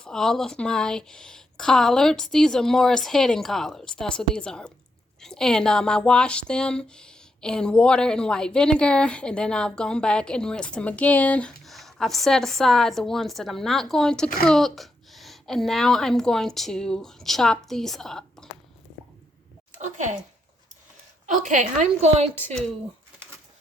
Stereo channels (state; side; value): normal; both; correlation 0.81